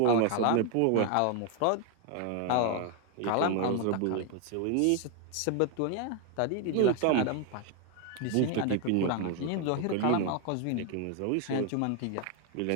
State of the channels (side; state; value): both; different; correlation 0.01